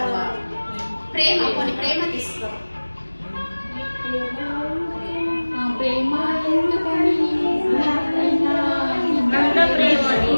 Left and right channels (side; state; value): both; inverted; correlation -1.00